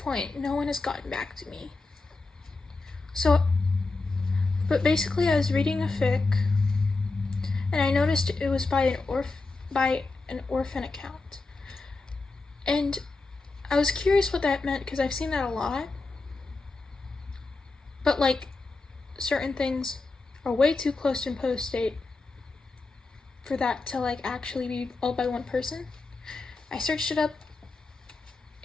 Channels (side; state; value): right; quieter; 3.6 dB